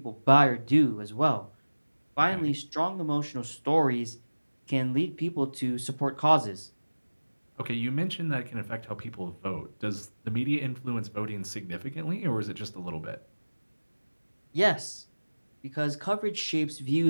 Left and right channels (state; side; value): inverted; both; correlation -1.00